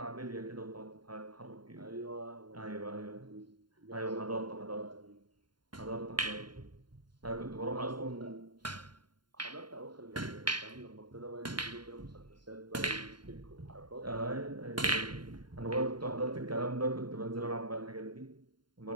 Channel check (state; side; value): late; left; 0.72 ms